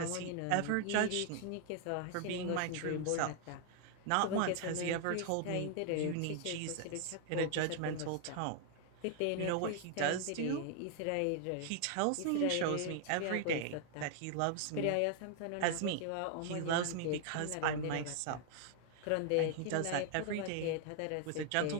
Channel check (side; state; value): both; different; correlation 0.00